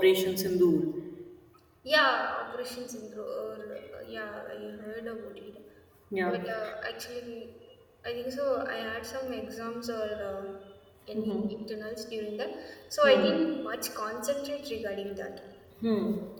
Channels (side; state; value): both; identical; correlation 1.00